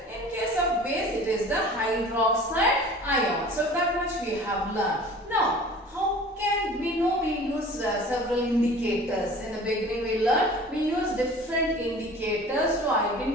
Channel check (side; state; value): both; normal; correlation 0.44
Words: In case of base, it is the hydroxide ion. So that much we have learned. Now, how can we know? We use several indicators. In the beginning we learned we use different indicators to